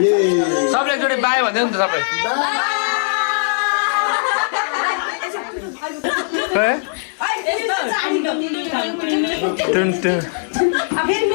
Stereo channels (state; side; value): silent; right; digital silence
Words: सबले एकचोटि बाई भन्दै नि त सबै